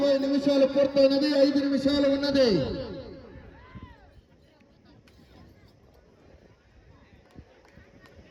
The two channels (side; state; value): both; identical; correlation 1.00